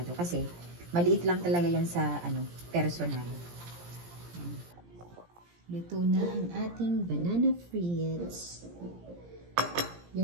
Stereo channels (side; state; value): left; late; 17 ms